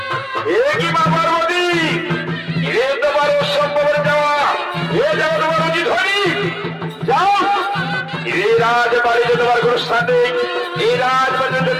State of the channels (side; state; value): both; identical; correlation 1.00